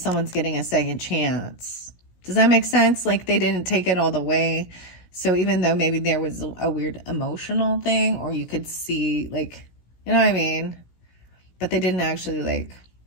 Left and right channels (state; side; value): late; right; 16 ms